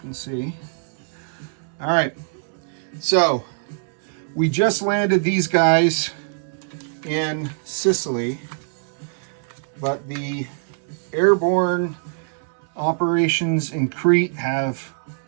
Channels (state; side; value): silent; left; 63 dB below the other